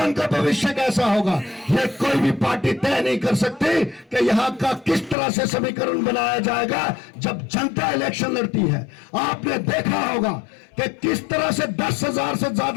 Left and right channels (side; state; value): right; drops out; at 5.2 s